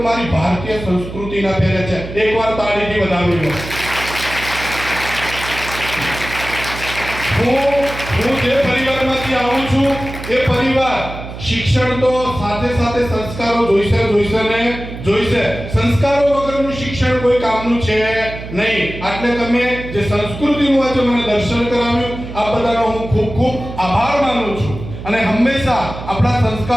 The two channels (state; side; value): noise; right; hum, 11 dB below the sound